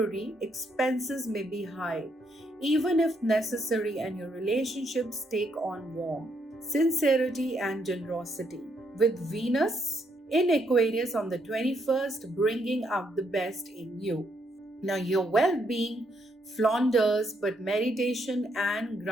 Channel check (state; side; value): normal; both; correlation 0.74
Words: expenses may be high, even if necessary, and your relationships take on warmth, sincerity, and generosity. With Venus in Aquarius on the 21st, bringing out the best in you. Now, your well being flounders, but meditation and